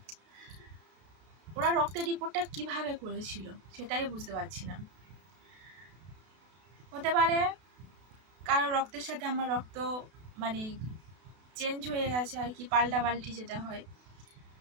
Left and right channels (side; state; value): left; late; 32 ms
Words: ওরা রক্তের রিপোর্টটা কিভাবে করেছিল সেটাই বুঝতে পারছি না। হতে পারে কারো রক্তের সাথে আমার রক্ত মানে চেঞ্জ হয়ে গেছে আর কি, পাল্টাপাল্টি যেটা হয়।